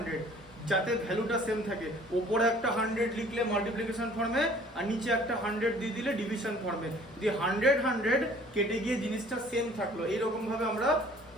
যাতে ভ্যালুটা সেম থাকে, উপরে একটা 100 লিখলে মাল্টিপ্লিকেশন ফর্মে আর নিচে একটা 100 দিয়ে দিলে ডিভিশন ফর্মে, যে 100 কেটে গিয়ে জিনিসটা সেম থাকলো, এইরকম ভাবে আমরা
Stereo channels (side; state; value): both; normal; correlation 0.53